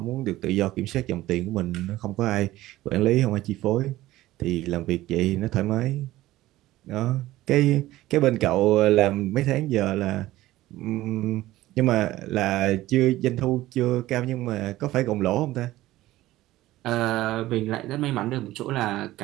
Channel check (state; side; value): quieter; left; 16.2 dB